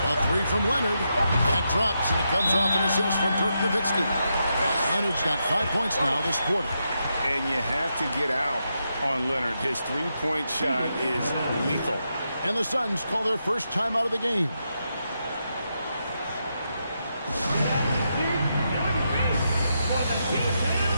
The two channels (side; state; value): both; inverted; correlation -0.84